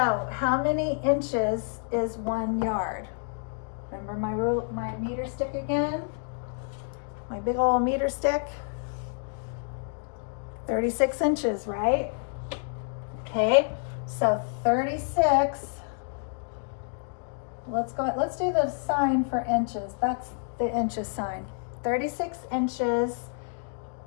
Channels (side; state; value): right; silent; 59 dB below the other